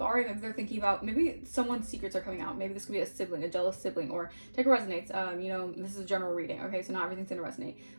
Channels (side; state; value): both; inverted; correlation -1.00